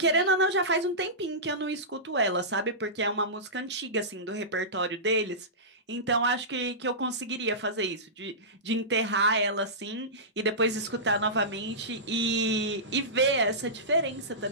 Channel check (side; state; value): both; normal; correlation -0.18